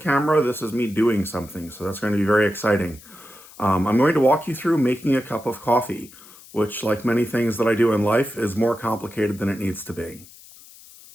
camera, this is me doing something, so that's going to be very exciting. I'm going to walk you through making a cup of coffee, which, like many things that I do in life, is more complicated than it needs to be.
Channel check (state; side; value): noise; left; hiss, 21 dB below the sound